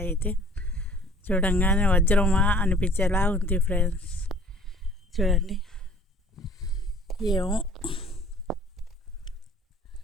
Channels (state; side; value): normal; both; correlation 0.52